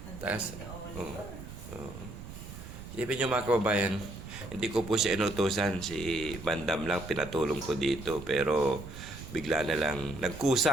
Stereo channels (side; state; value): right; noise; rumble, 12 dB below the sound